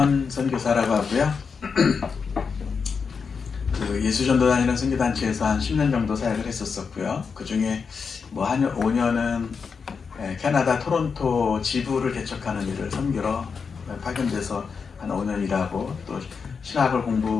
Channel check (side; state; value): right; quieter; 5.6 dB